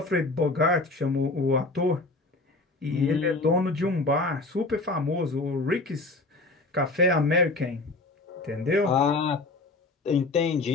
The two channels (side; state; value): right; quieter; 3.2 dB